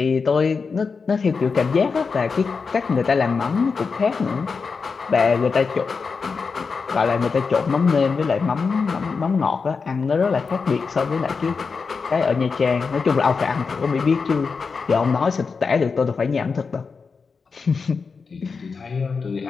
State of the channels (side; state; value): right; quieter; 5.0 dB